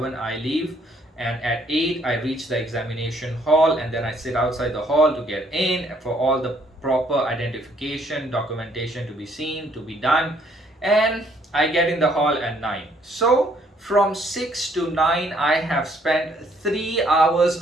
I leave, and at 8 I reach the examination hall, and then I sit outside the hall to get in for all the proper identification documentation to be seen, to be done, and I get in the hall at 9. So from 6 to 9 I have spent 3 hours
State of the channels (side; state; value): both; normal; correlation 0.66